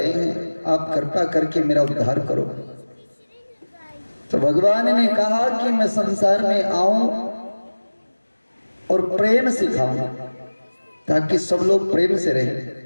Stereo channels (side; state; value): both; inverted; correlation -1.00